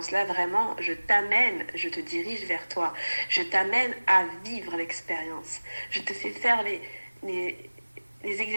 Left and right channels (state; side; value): inverted; both; correlation -1.00